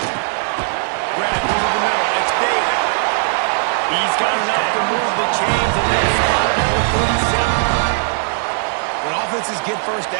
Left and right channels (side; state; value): left; silent; 67 dB below the other